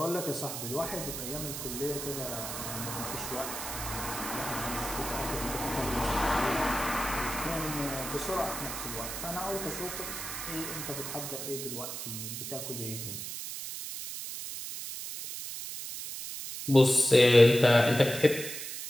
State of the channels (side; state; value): right; noise; hiss, 7 dB below the sound